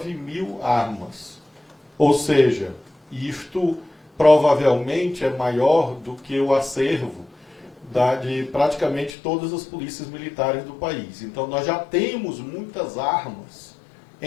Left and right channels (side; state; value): right; drops out; at 9.1 s